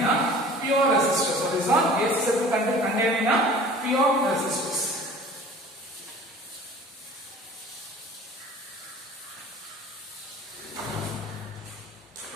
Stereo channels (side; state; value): both; normal; correlation 0.46